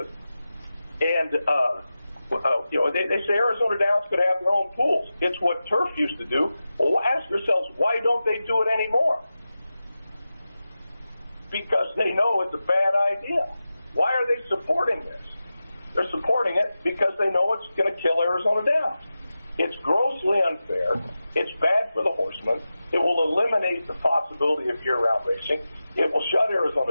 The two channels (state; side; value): inverted; both; correlation -0.93